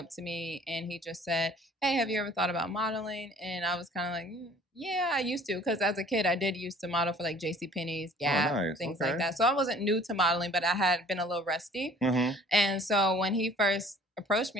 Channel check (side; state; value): both; normal; correlation 0.53